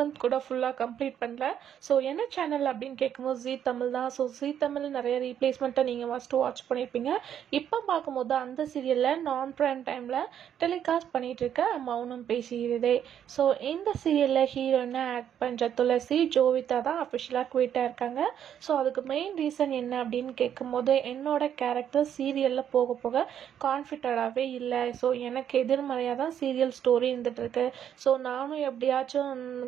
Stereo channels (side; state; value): left; quieter; 9.5 dB